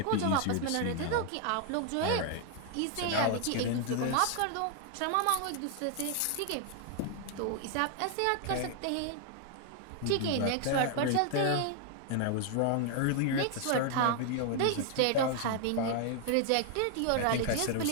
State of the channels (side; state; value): both; different; correlation 0.00